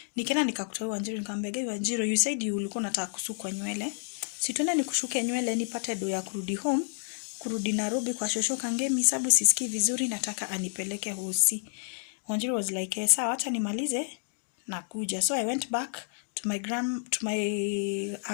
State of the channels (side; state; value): right; silent; 58 dB below the other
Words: Nikaenda nikakuta Wanjiru, nikamwambia Wanjiru, you said you ulikuwa unataka kusukwa nywele. Si tuende nikushuke nywele nipate do ya kurudi home, kurudi Nairobi kwa shosho Kangemi, sababu sisikii vizuri, nataka anipeleke hosi. Wanjiru was like, sawa acha nimalize nakuja. So I went back to my